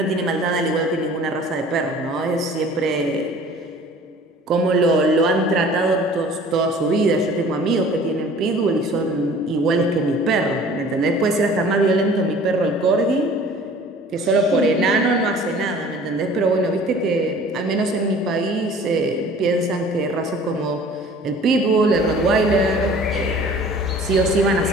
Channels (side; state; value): both; normal; correlation 0.48